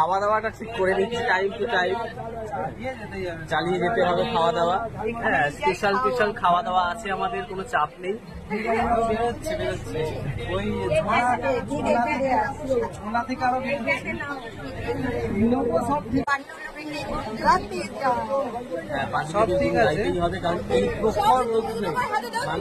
দাওয়াটা ঠিক করে নিচ্ছি, টাইম টু টাইম চালিয়ে যেতে হবে খাওয়া দাওয়া। হ্যাঁ, স্পেশাল খাওয়া দাওয়া আছে আমাদের, কোনো চাপ নেই। ওই থেকে আরো সব ঠিক আছে হবে, কারণ এই প্রখর রোদ্দুরে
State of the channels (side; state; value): both; identical; correlation 1.00